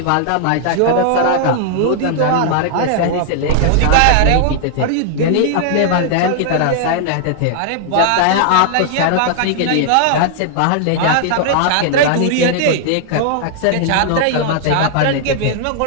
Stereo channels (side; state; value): both; different; correlation -0.01